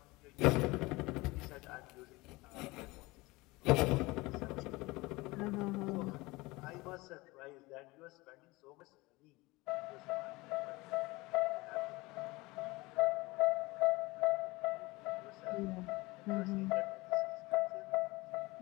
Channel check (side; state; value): right; quieter; 22.3 dB